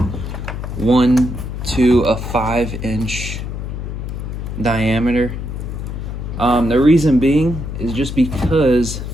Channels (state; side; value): noise; left; hum, 6 dB below the sound